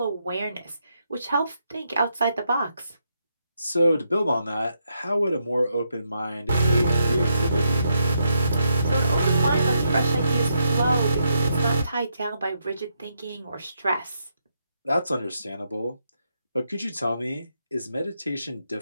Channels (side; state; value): both; inverted; correlation -0.79